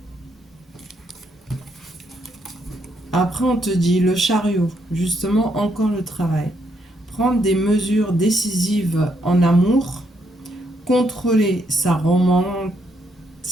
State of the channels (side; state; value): both; normal; correlation 0.75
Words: Après, on te dit le chariot, justement, encore le travail. Prendre des mesures décisives en amour, contrôler sa romance,